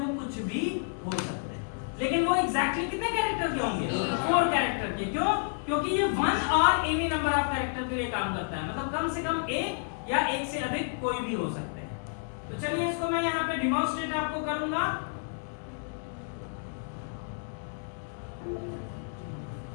कुछ भी हो सकते हैं। लेकिन वो एग्जैक्टली कितने कैरेक्टर के होंगे? 4 कैरेक्टर के। क्यों? क्योंकि ये 1 और एनी नंबर ऑफ कैरेक्टर के लिए काम करता है, मतलब कम से कम एक या एक से अधिक कोई भी हो सकते हैं। तो चलिए इसको मैं यहाँ पे डिमॉन्स्ट्रेट आपको करूंगा।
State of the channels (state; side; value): silent; right; digital silence